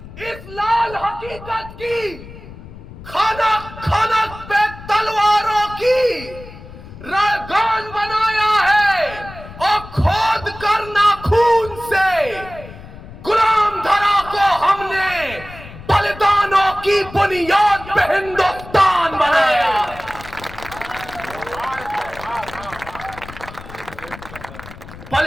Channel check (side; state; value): left; noise; rumble, 16 dB below the sound